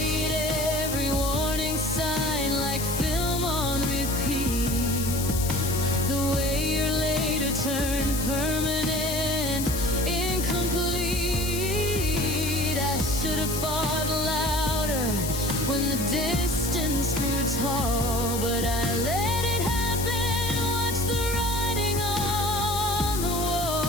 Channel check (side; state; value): left; noise; hiss, 5 dB below the sound